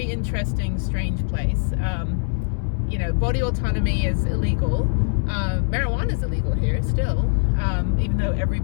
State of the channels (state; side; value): silent; right; digital silence